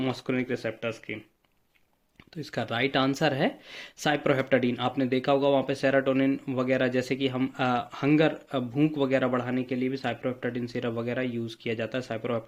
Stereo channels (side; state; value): both; identical; correlation 1.00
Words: मस्करिनिक रिसेप्टर्स की? तो इसका राइट आंसर है साइप्रोहेप्टाडीन। आपने देखा होगा वहाँ पे सेरोटोनिन वगैरह, जैसे कि हम हंगर भूख वगैरह बढ़ाने के लिए भी साइप्रोहेप्टाडीन सिरप वगैरह यूज़ किया जाता है,